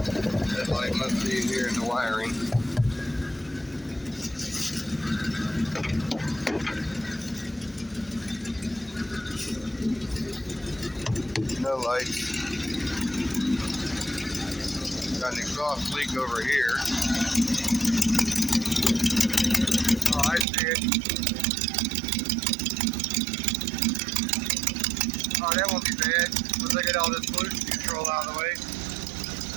No lights. Got an exhaust leak over here. Oh, I see it. Oh, that won't be bad. Once I get all this pollution control out of the way.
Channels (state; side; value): drops out; left; at 20.5 s